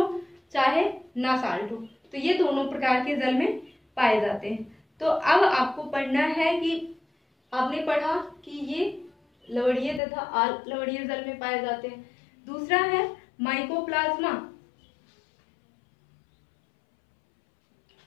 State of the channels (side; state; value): right; drops out; at 10.0 s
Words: चाहे ना साल्ट हो, तो ये दोनों प्रकार के जल में पाए जाते हैं। तो अब आपको पढ़ना है कि आपने पढ़ा कि ये लवणीय तथा अलवणीय जल में पाए जाते हैं। दूसरा है माइकोप्लाज्मा,